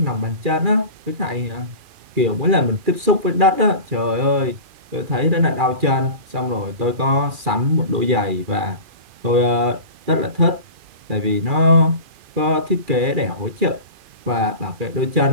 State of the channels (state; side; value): late; left; 2.4 ms